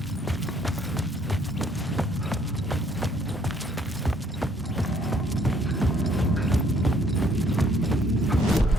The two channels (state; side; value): normal; both; correlation 0.64